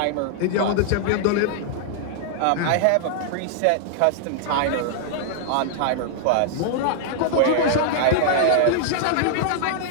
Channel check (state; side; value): different; both; correlation -0.01